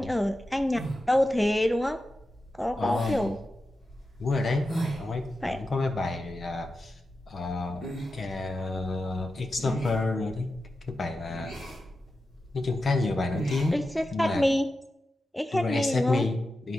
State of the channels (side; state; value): both; normal; correlation 0.91